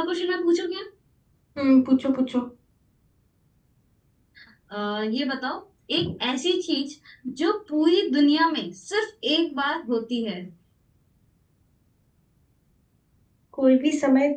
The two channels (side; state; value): both; identical; correlation 1.00